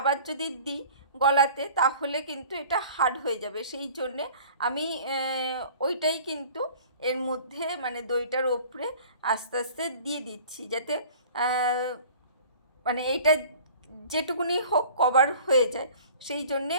যদি দিই গলাতে তাহলে কিন্তু এটা হার্ড হয়ে যাবে, সেই জন্যে আমি ওইটাই কিন্তু এর মধ্যে মানে দইটার ওপরে আস্তে আস্তে দিয়ে দিচ্ছি, যাতে মানে এইটা যেটুকুনি হোক কভার হয়ে যায়। সেই জন্যে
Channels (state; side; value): inverted; both; correlation -0.47